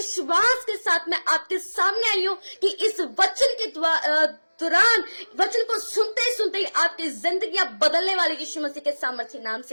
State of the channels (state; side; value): inverted; both; correlation -1.00